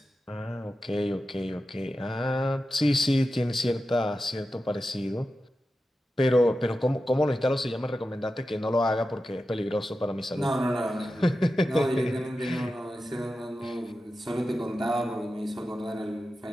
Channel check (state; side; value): normal; both; correlation 0.92